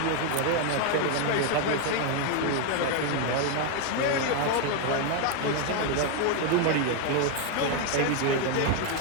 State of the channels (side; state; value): both; different; correlation 0.01